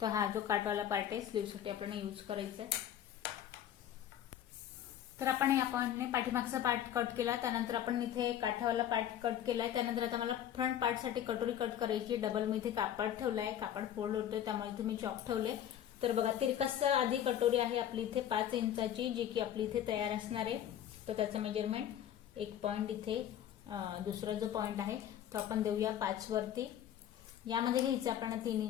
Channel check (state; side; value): quieter; right; 10.7 dB